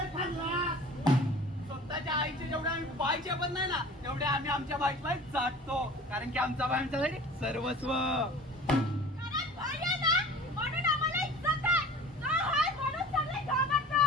ठरला. स्वतःच्या आईचे जेवढे आम्ही बाईचे पण नाही ना तेवढे आम्ही आमच्या बाईला जाटतो कारण की आमचा बाई आमच्यासाठी सर्वस्व. कारण बाई आहे ना म्हणून आम्हाला इज्जत आहे. का आहे म्हणून सगळे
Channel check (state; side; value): normal; both; correlation 0.42